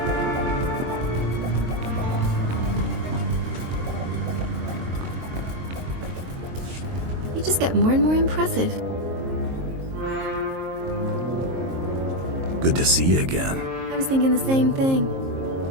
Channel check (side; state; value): left; late; 23 ms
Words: You just get more and more impressive. Good to see you again. I was thinking the same thing.